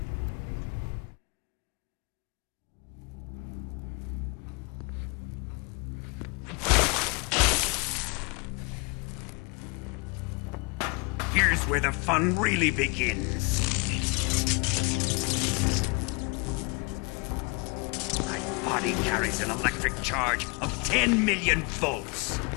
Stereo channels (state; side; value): quieter; right; 30.8 dB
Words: Here's where the fun really begins. My body carries an electric charge of 10 million volts.